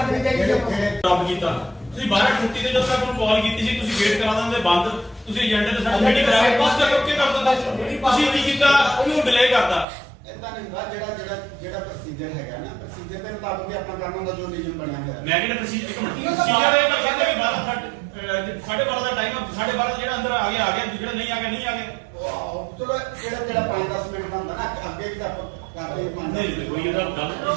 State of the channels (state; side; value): drops out; left; at 9.9 s